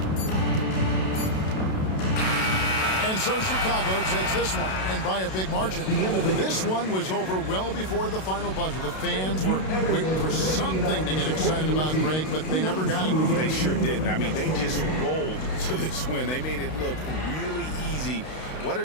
And so Chicago takes this one, and by a big margin. This one was over well before the final buzzer. The fans were waiting for something to get excited about, Greg, but they never got it. They sure didn't. I mean, they just rolled to this win. They made it look really easy. What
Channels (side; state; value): right; late; 32 ms